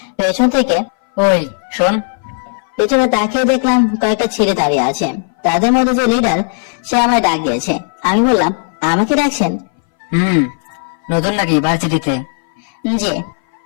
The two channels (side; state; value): right; silent; 61 dB below the other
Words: পেছন থেকে, ওই শোন, পেছনে তাকিয়ে দেখলাম কয়েকটা ছেলে দাঁড়িয়ে আছে। তাদের মধ্যে যে লিডার, সে আমায় ডাক দিয়েছে। আমি বললাম, আমাকে ডাকছেন? নতুন নাকি ভার্সিটিতে? জি।